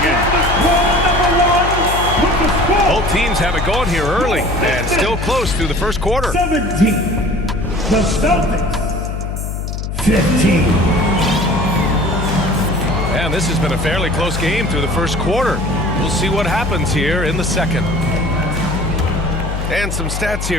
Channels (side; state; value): left; noise; hum, 4 dB below the sound